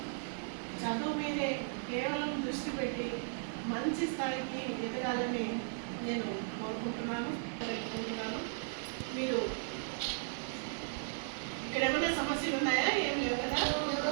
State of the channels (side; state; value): left; silent; 54 dB below the other